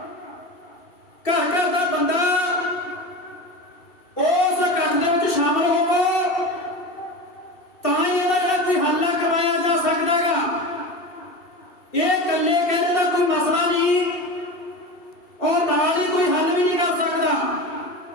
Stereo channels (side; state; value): right; late; 2.7 ms